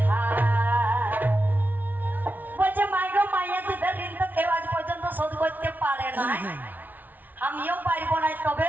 শোধ করতে পারে না আমিও পারবো না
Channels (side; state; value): left; late; 0.081 ms